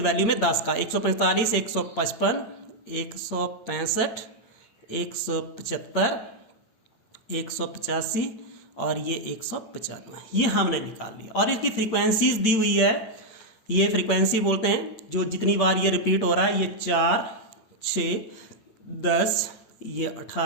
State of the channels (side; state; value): right; late; 8.7 ms